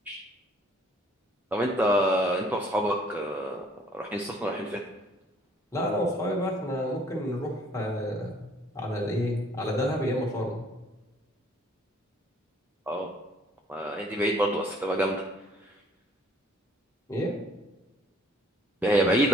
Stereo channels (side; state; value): both; normal; correlation 0.59